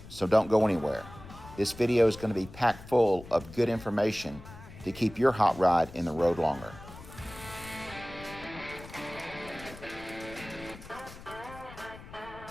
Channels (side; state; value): left; noise; rumble, 16 dB below the sound